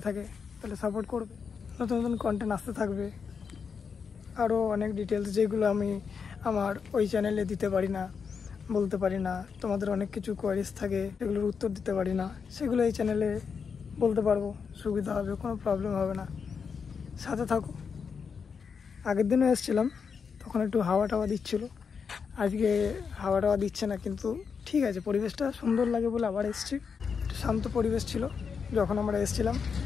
থাকে তাহলে সাপোর্ট করবে। নতুন নতুন কন্টেন্ট আসতে থাকবে, আরও অনেক ডিটেলস যেগুলো আমি আমার ওই চ্যানেলে দিতে পারি না, বলতে পারি না। তোমাদের অনেক কিছু কোয়ারিজ থাকে, সেগুলোর উত্তর দিতে পারি না, সেগুলো এই চ্যানেলে বলতে পারবো, সুবিধা হবে, কোনো প্রবলেম হবে না। সাথে থাকো। আগের দিনও এসেছিলাম, তখন একটু হাওয়া টাওয়া দিচ্ছিল। আজকে হাওয়া টাওয়া দিচ্ছে না, কিন্তু ঠিক আছে, পরিবেশটা সুন্দর লাগে বলে আবার এসেছি। একটু শান্ত পরিবেশ ছিল যখন আমরা এসেছিলাম।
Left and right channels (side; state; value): right; quieter; 6.0 dB